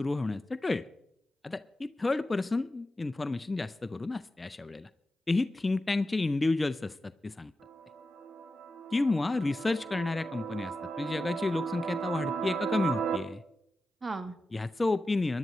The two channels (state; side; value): normal; both; correlation 0.91